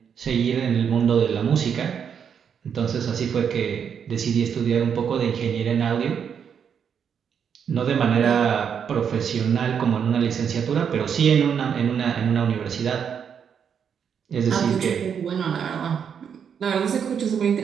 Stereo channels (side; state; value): left; quieter; 7.5 dB